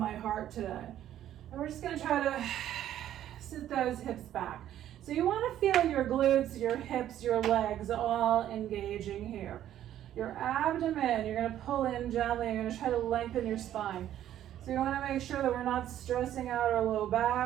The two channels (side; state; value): left; quieter; 11.7 dB